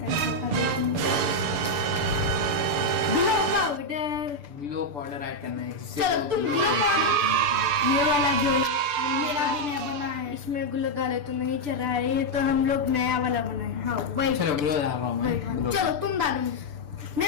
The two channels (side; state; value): left; late; 6.9 ms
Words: Glow powder, glow powder add करना है। चलो तुम ग्लो पाउडर, ये वाला जो मेरा भी नया बना है, इसमें ग्लो डाले तो नहीं चल रहा है, ये तो हम लोग नया वाला बनाए। हाँ वही। चलो ग्लो डाल रहा हूँ मैं। ग्लो। चलो तुम डालो,